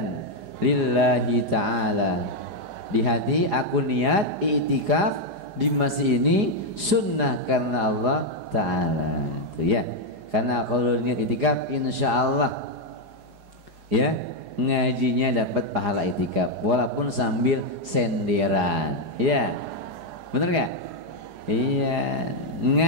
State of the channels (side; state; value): left; late; 4.9 ms